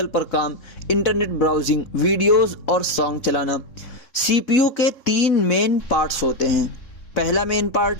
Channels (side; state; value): right; late; 3.7 ms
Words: पर काम, इंटरनेट ब्राउजिंग, वीडियोस और सॉन्ग चलाना। CPU के 3 मेन पार्ट्स होते हैं। पहला मेन